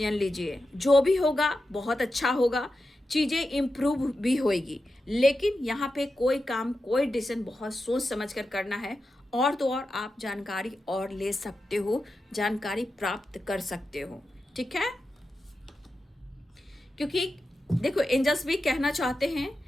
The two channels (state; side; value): normal; both; correlation 0.90